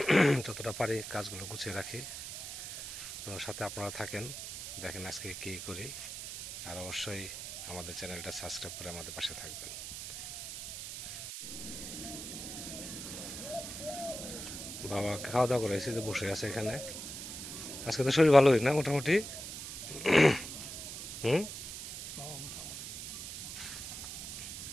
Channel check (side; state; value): right; noise; hiss, 8 dB below the sound